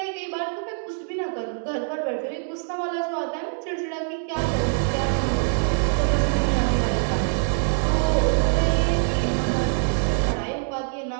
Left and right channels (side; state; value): left; silent; digital silence